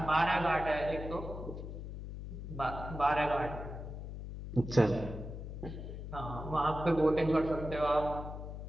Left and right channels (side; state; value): left; noise; hum, 8 dB below the sound